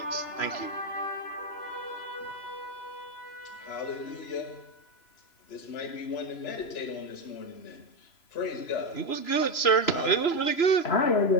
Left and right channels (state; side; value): late; right; 3.0 ms